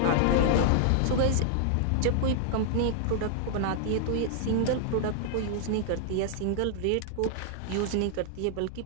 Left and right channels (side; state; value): both; different; correlation -0.01